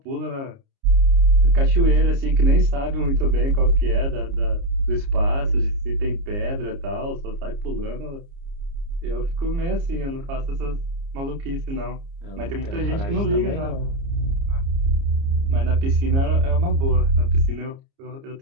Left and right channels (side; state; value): left; late; 29 ms